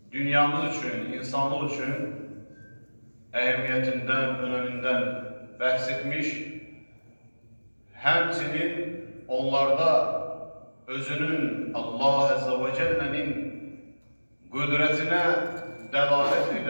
dünyamız için, insanlık için ehemmiyetinden, öneminden bahsetmiş, həmçinin onlarda özünün Allah Azze ve Celle'nin qüdrətinə dəlalət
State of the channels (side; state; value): both; inverted; correlation -1.00